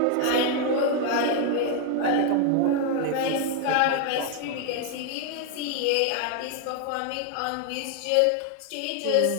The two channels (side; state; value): both; different; correlation 0.00